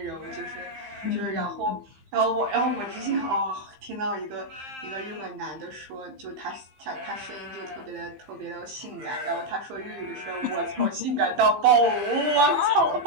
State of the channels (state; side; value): late; left; 15 ms